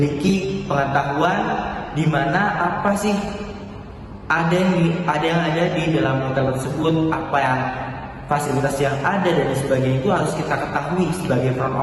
pengetahuan di mana apa sih ada yang ada di dalam hotel tersebut, apa yang fasilitas yang ada dan sebagainya itu harus kita ketahui sebagai front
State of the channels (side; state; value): both; identical; correlation 1.00